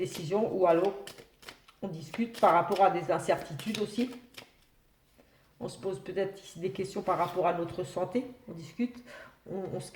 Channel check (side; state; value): both; identical; correlation 1.00